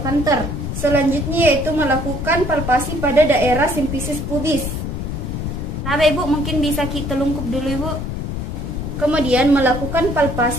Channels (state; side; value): noise; left; rumble, 4 dB below the sound